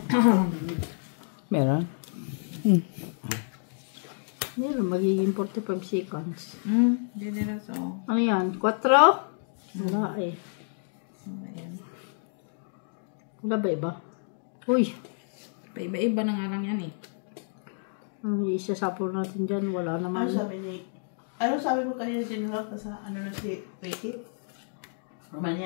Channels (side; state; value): right; silent; digital silence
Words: Meron? Meron, magiging 45 seconds. Hindi na so. Ano yan? 4? Wala eh. Ayan. Wala ba iba? Uy! Paiba-iba na nga lang yan eh. Ang isasapol natin dyan, wala naman. Ano sabi mo kanina sinulak na sa ano na si Ricky?